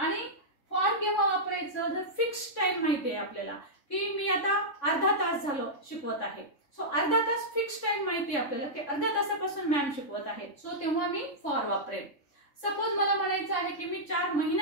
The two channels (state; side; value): late; right; 3.6 ms